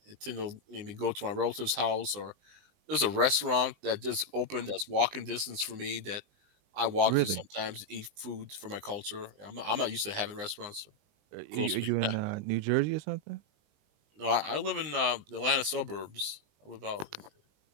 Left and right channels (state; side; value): late; left; 20 ms